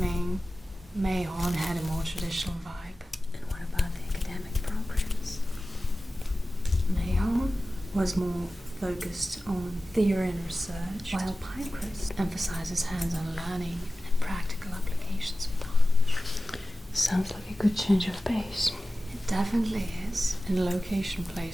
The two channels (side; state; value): both; normal; correlation 0.95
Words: Mayhorn had a more traditional vibe. And what about the academic programs? Mayhorn was more focused on theory and research, while Pinecrest emphasizes hands-on learning and practical applications of knowledge. Sounds like a good change of pace. It definitely is, and location